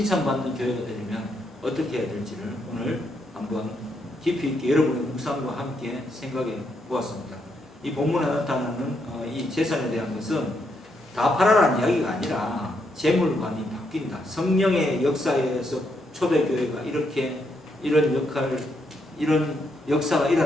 교회가 되려면 어떻게 해야 될지를 오늘 한번 깊이 있게 여러분의 묵상과 함께 생각해 보았습니다. 이 본문에 나타나는 이 재산에 대한 것은 다 팔아라는 이야기가 아니라 재물관이 바뀐다. 성령의 역사에 의해서 초대교회가 이런 역사가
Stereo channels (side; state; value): both; normal; correlation 0.78